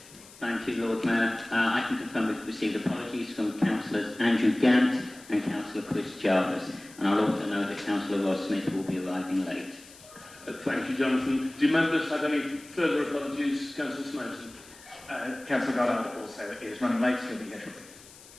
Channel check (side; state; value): left; noise; hiss, 21 dB below the sound